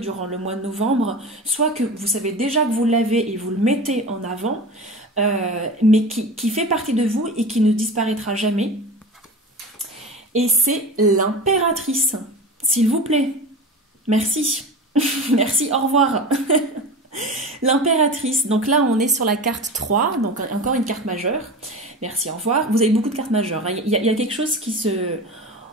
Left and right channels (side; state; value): both; normal; correlation 0.31